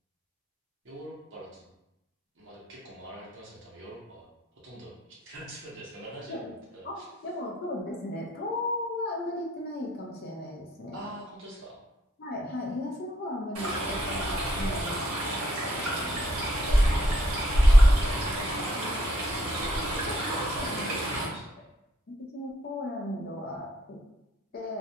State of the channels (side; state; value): both; normal; correlation 0.71